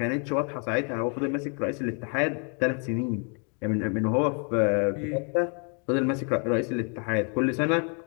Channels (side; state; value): right; quieter; 38.6 dB